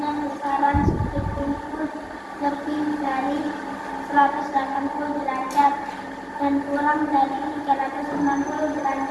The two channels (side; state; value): both; identical; correlation 1.00